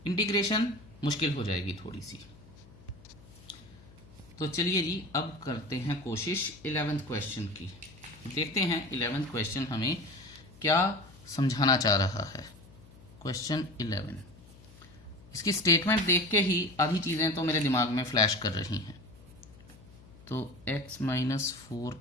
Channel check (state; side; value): noise; left; hum, 22 dB below the sound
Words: इंटीग्रेशन मुश्किल हो जाएगी थोड़ी सी। तो चलिए जी अब करते हैं कोशिश 11th क्वेश्चन की। देखते हैं 11th क्वेश्चन हमें क्या समझाना चाह रहा है। क्वेश्चन 11, इसकी स्टेटमेंट देख के ही आधी चीज़ें तो मेरे दिमाग में फ्लैश कर रही हैं। तो x माइनस 4